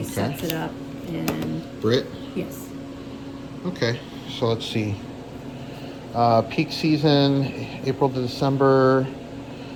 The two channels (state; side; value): identical; both; correlation 1.00